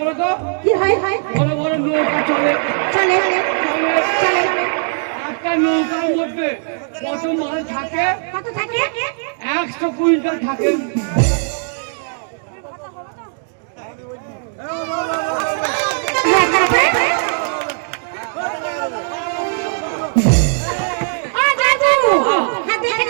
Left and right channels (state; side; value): silent; left; digital silence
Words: তো কি হয় বড় বড় নৌকা চলে একটা নৌকার মধ্যে কত মাল থাকে কত থাকে 100 কুইন্টাল থাকে